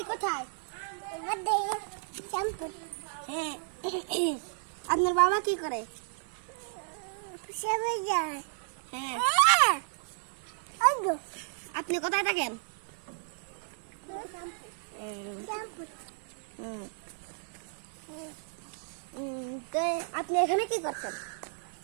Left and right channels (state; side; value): silent; left; digital silence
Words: কোথায়? শ্যামপুর। হ্যাঁ, আপনার বাবা কি করে? যায়। হ্যাঁ, আপনি কোথায় থাকেন? তো আপনি এখানে কি করছেন?